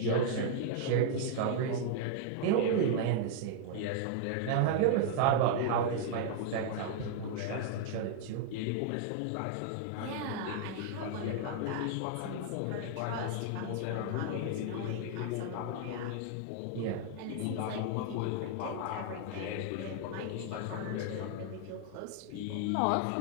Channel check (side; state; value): both; different; correlation -0.01